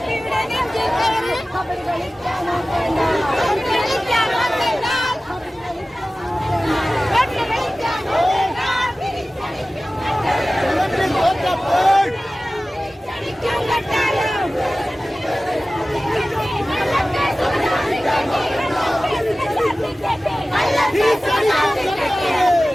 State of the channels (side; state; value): both; normal; correlation 0.97